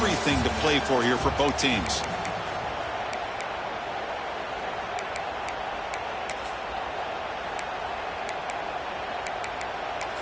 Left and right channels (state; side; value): identical; both; correlation 1.00